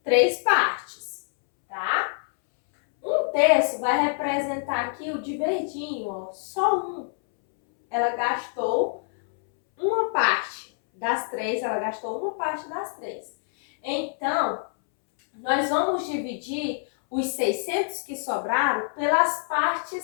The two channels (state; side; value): silent; right; 61 dB below the other